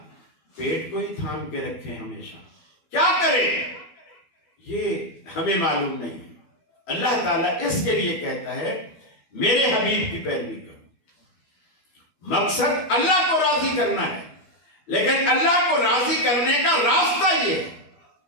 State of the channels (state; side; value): late; right; 13 ms